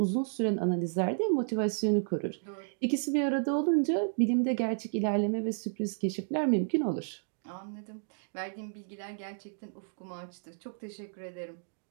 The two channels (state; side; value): silent; left; digital silence